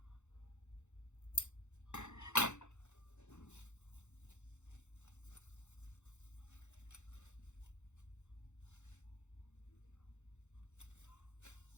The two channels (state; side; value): late; right; 0.83 ms